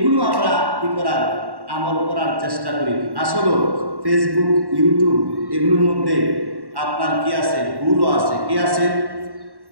আমরা কি করার? আমল করার চেষ্টা করি। আসলে ফেসবুক ইউটিউব এগুলোর মধ্যে আপনার কি আছে? ভুলও আছে। কি আছে?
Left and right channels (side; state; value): left; late; 1.1 ms